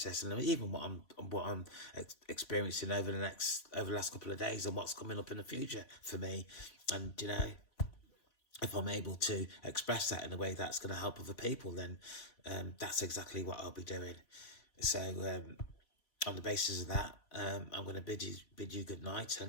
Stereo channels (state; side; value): late; right; 3.0 ms